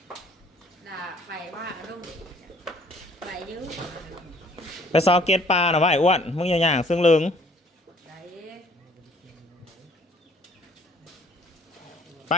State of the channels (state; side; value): normal; both; correlation 0.58